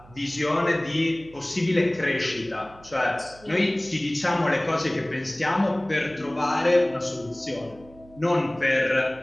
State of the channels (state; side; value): noise; right; hum, 23 dB below the sound